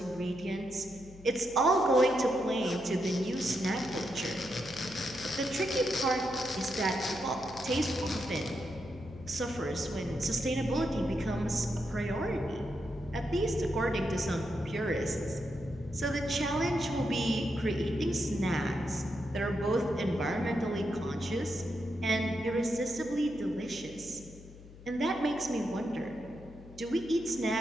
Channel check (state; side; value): noise; left; hum, 18 dB below the sound